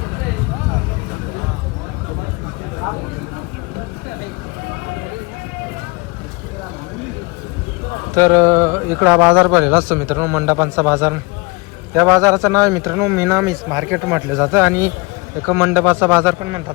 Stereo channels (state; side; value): quieter; right; 27.6 dB